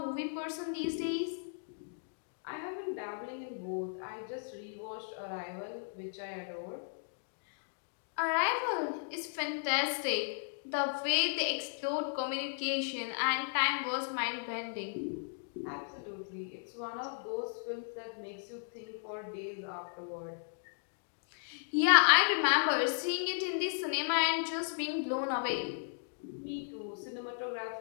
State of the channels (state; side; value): silent; right; digital silence